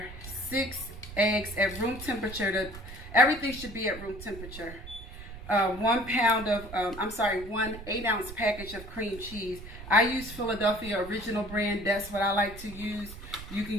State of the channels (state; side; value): noise; right; rumble, 13 dB below the sound